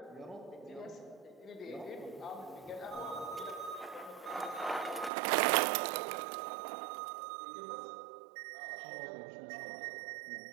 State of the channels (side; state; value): left; drops out; at 5.1 s